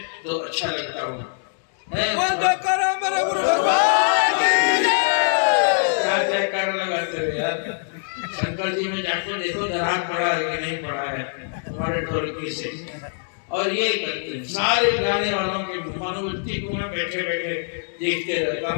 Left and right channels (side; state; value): right; silent; digital silence